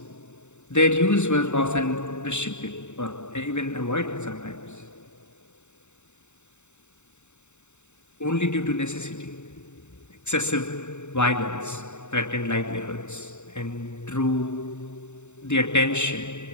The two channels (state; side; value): late; right; 0.83 ms